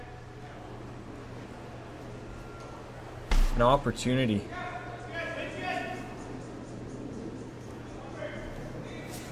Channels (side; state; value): both; identical; correlation 1.00